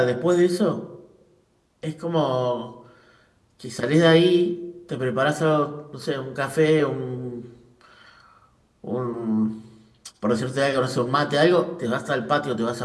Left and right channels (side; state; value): both; identical; correlation 1.00